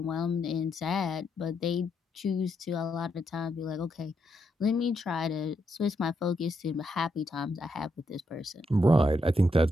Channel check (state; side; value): normal; both; correlation 0.80